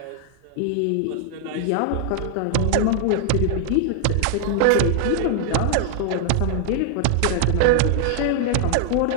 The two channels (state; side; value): different; both; correlation 0.00